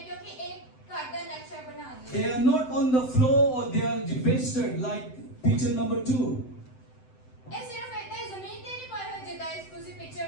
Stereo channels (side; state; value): right; late; 7.8 ms